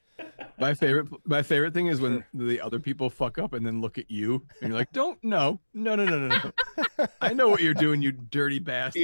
My favorite thing For is when sure. the other people fuck up and then look at you and you're like, don't no, no, no, no, no, no. I know what you're doing, you dirty bastard.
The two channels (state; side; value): inverted; both; correlation -1.00